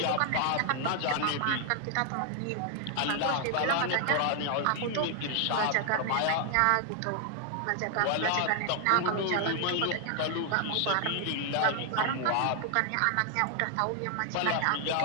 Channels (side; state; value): both; different; correlation 0.00